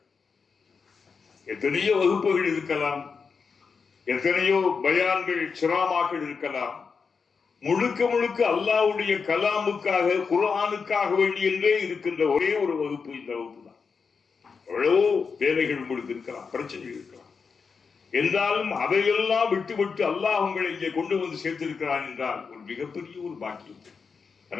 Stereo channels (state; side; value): quieter; right; 5.4 dB